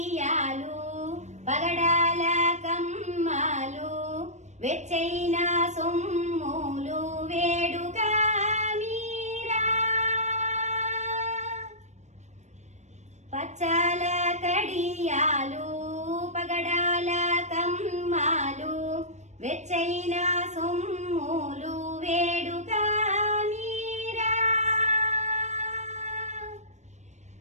పగడాల కమ్మాలు వెచ్చైన సొమ్ములు వేడుగా మీరా పచ్చాల కడియాలు పగడాల కమ్మాలు వెచ్చైన సొమ్ములు వేడుగా మీరా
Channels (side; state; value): left; late; 0.34 ms